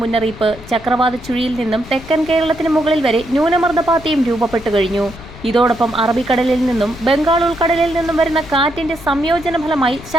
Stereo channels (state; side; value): noise; left; rumble, 17 dB below the sound